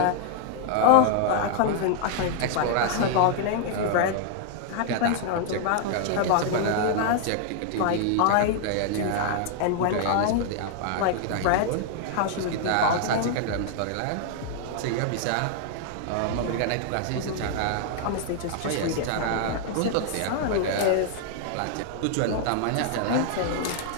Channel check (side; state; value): both; different; correlation 0.00